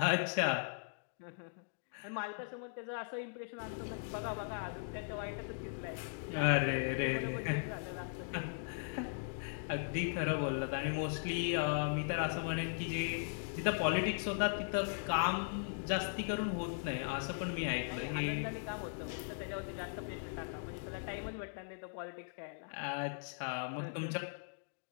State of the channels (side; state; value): right; silent; digital silence